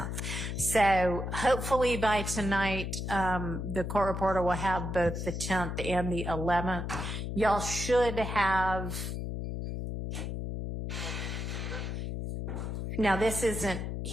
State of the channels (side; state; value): left; noise; hum, 4 dB below the sound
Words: So hopefully by tonight, the court reporter will have both the 10th and the 11th. Y'all should have, now this isn't